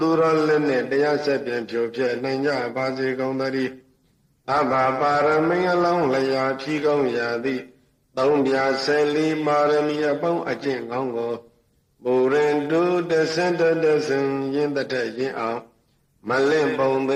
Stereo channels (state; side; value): identical; both; correlation 1.00